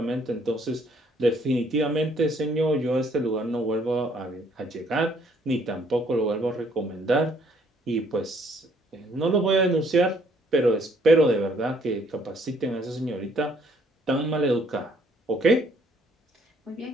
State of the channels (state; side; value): normal; both; correlation 0.64